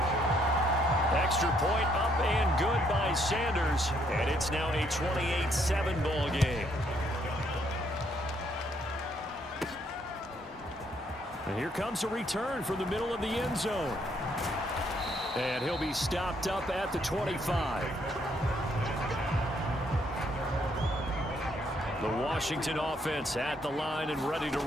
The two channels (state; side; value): normal; both; correlation 0.70